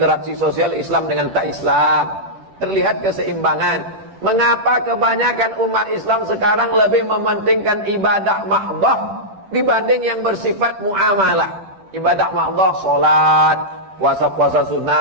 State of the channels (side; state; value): left; late; 10 ms